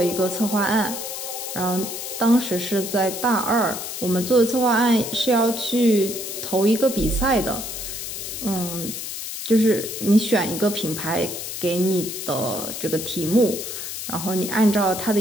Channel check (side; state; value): left; noise; hiss, 7 dB below the sound